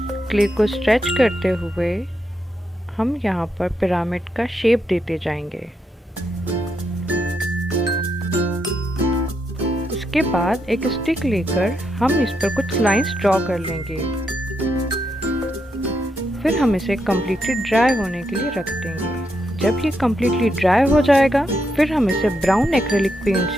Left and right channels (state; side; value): normal; both; correlation 0.81